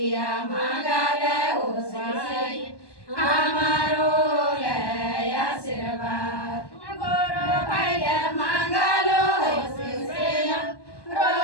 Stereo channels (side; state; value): right; late; 1.2 ms